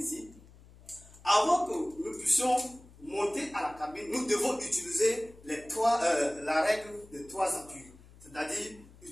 Avant que nous puissions monter à la cabine, nous devons utiliser la règle de 3 appuis. C'est-à-dire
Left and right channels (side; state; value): left; noise; hum, 23 dB below the sound